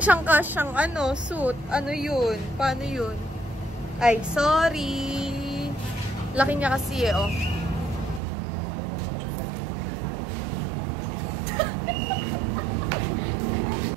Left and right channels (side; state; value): left; drops out; at 8.2 s